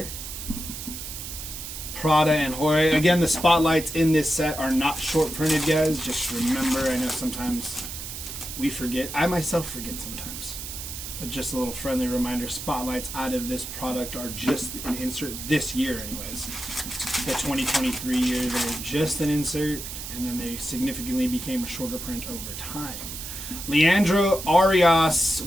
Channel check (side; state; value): right; noise; hiss, 8 dB below the sound